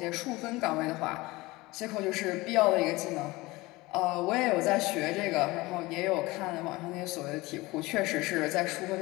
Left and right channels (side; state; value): right; quieter; 21.1 dB